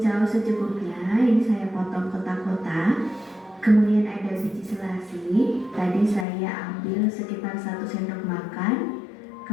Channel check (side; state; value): right; drops out; at 6.2 s